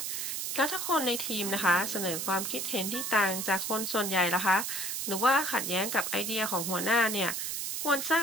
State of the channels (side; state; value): right; noise; hiss, 2 dB below the sound